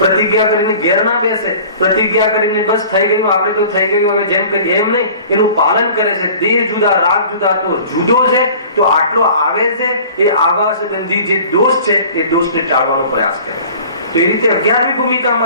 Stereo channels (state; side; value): inverted; both; correlation -0.45